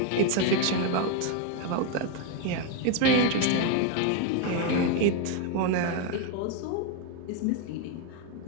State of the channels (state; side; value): different; both; correlation 0.02